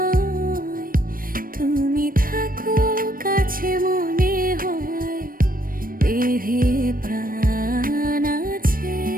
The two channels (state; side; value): late; left; 0.41 ms